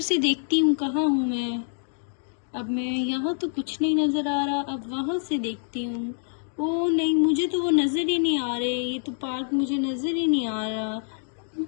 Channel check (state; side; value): silent; right; 61 dB below the other